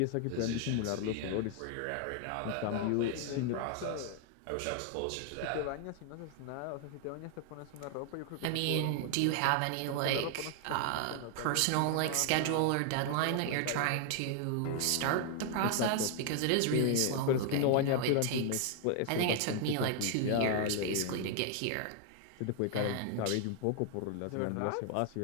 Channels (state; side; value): different; both; correlation 0.00